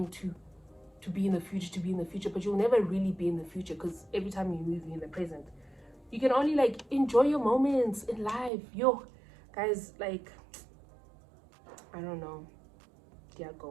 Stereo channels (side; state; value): left; drops out; at 8.5 s